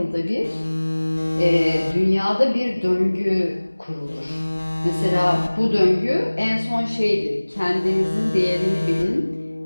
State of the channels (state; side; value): inverted; both; correlation -1.00